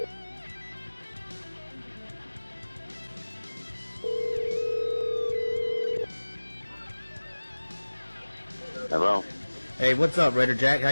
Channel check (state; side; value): inverted; both; correlation -1.00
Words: Hello. Hey, what's up, Raider Jack? How